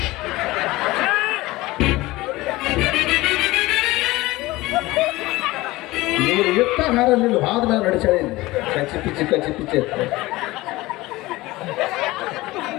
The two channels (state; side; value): quieter; right; 19.5 dB